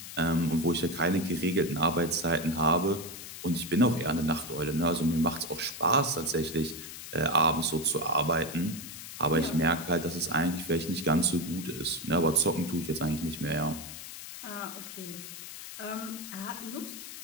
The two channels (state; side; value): noise; left; hiss, 11 dB below the sound